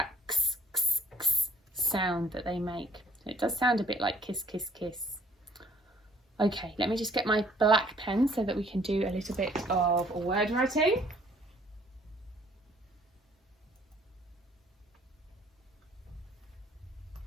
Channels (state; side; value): normal; both; correlation 0.61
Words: x, x, x sound that they make. It does sound a bit like kiss, kiss, kiss. Okay, let me just get my black pen so that we can do a little bit of word writing.